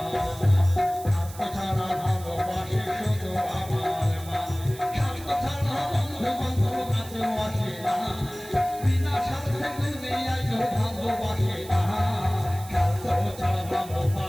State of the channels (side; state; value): right; noise; hiss, 17 dB below the sound